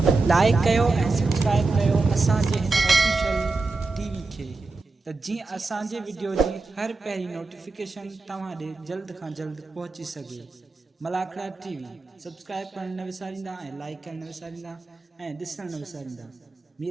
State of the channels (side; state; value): left; quieter; 3.6 dB